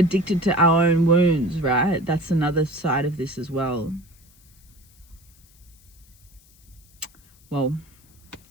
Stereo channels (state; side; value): noise; left; hiss, 29 dB below the sound